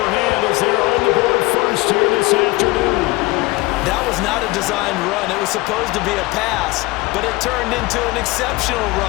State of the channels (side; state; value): right; quieter; 21.2 dB